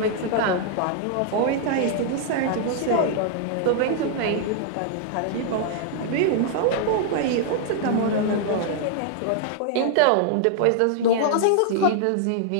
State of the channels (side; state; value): both; different; correlation -0.01